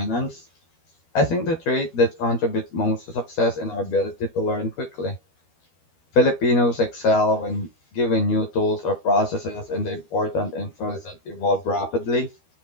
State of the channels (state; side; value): late; right; 12 ms